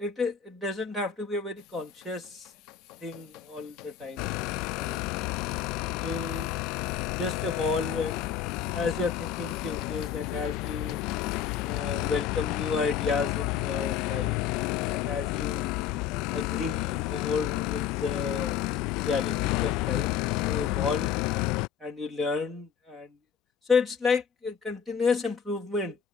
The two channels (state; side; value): quieter; right; 7.7 dB